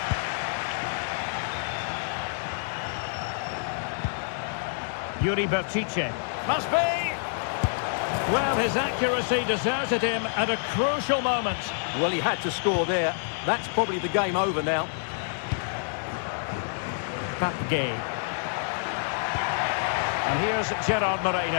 Yuri Bertice. Must be! Well, his accuracy deserted him at a crucial moment. Well, he had to score there. That's probably the game over now. Papgay. And here's Gerard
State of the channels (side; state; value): right; silent; digital silence